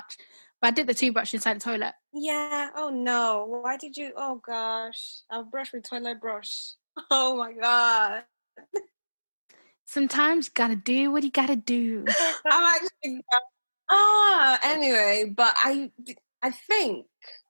But I dipped the toothbrush inside the toilet. Yeah. Oh, no. Why did you? Oh, gosh. I'll brush with toilet brush. Oh, my God. Sometimes you gotta do what you gotta do. I'm actually... anyway, but I think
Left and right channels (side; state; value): both; inverted; correlation -1.00